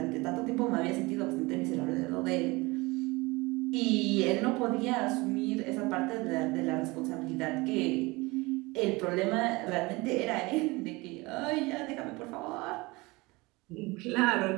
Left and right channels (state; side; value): quieter; left; 23.5 dB